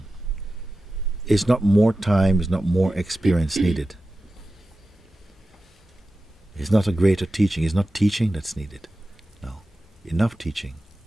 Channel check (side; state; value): both; normal; correlation 0.93